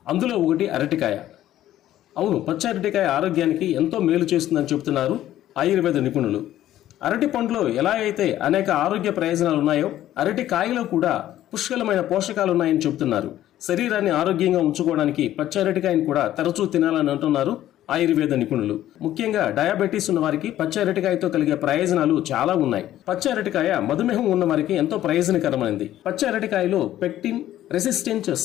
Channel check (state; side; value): quieter; right; 13.1 dB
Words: అందులో ఒకటి అరటికాయ. అవును, పచ్చి అరటికాయ ఆరోగ్యానికి ఎంతో మేలు చేస్తుందని చెబుతున్నారు ఆయుర్వేద నిపుణులు. అరటి పండులో ఎలా అయితే అనేక ఆరోగ్య ప్రయోజనాలు ఉన్నాయో అరటి కాయలో కూడా పుష్కలమైన పోషకాలు ఉన్నాయని చెబుతున్నారు. శరీరాన్ని ఆరోగ్యంగా ఉంచుకోవడానికి పచ్చి అరటికాయని కూడా తరచూ తినాలని అంటున్నారు ఆయుర్వేద నిపుణులు. ముఖ్యంగా డయాబెటీస్ ఉన్న వారికి పచ్చి అరటికాయతో కలిగే ప్రయోజనాలు చాలా ఉన్నాయి. పచ్చి అరటికాయ మధుమేహం ఉన్న వారికి ఎంతో ప్రయోజనకరమైనది. పచ్చి అరటికాయలో పెక్టిన్ రెసిస్టెంట్